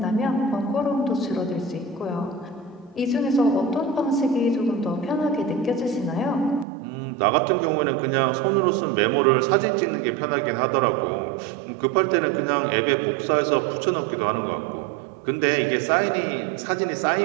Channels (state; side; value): drops out; left; at 6.7 s